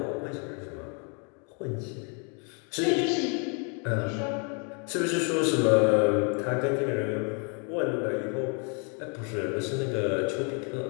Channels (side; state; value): right; quieter; 36.9 dB